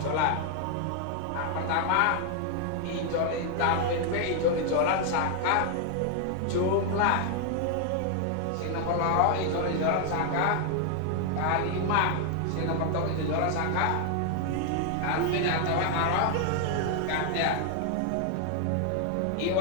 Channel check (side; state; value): both; different; correlation 0.00